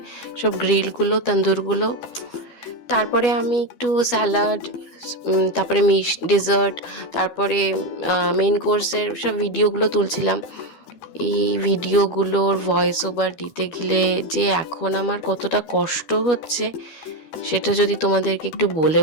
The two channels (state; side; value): late; right; 12 ms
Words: সব গ্রিলগুলো, তন্দুরগুলো। তারপরে আমি একটু স্যালাড, তারপরে ডেজার্ট, তারপরে মেন কোর্সের সব ভিডিওগুলো তুলছিলাম। এই ভিডিওগুলোর ভয়েস ওভার দিতে গেলে যে এখন আমার কতটা কষ্ট হচ্ছে সেটা যদি তোমাদেরকে একটু বলে